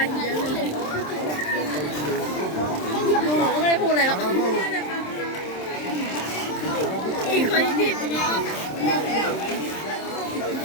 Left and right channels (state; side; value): late; right; 27 ms